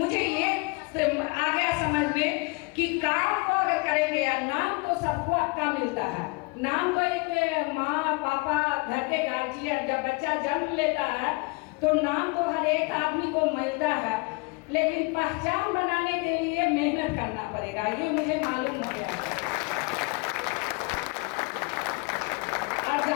ये आ गया समझ में कि काम को अगर करेंगे, या नाम तो सबको आपका मिलता है, नाम तो एक माँ पापा घर के गार्जियन, जब बच्चा जन्म लेता है तो नाम तो हर एक आदमी को मिलता है, लेकिन पहचान बनाने के लिए मेहनत करना पड़ेगा, ये मुझे मालूम हो गया। और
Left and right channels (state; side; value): quieter; right; 29.0 dB